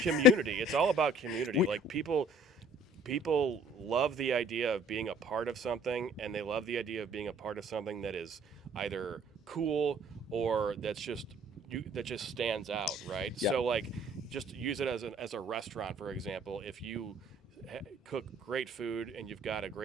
It's all about community. we, Like people love the idea of being a part of something, and they love the idea of being a part of something that is either cool or that just stands out, right? yeah, So like, just use it as a restaurant, for example. If you cook great food and you've got a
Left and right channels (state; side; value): normal; both; correlation 0.55